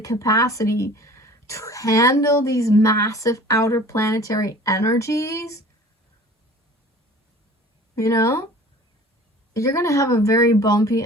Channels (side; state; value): both; normal; correlation 0.45